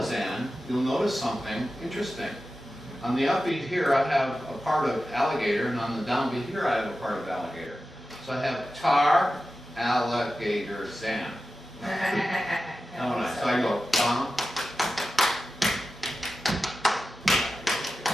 you'll notice something interesting. On the upbeat here, I have a part of alligator, and on the downbeat here, I have a part of alligator. So I have tar, alligator, zan. So I go, bum.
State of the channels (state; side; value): normal; both; correlation 0.93